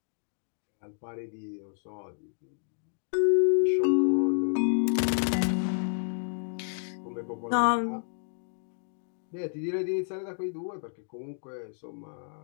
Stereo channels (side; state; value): right; silent; digital silence